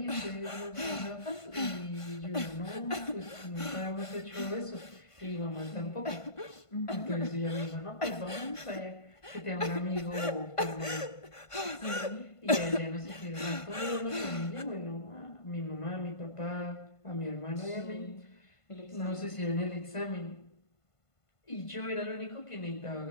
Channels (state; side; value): late; right; 1.5 ms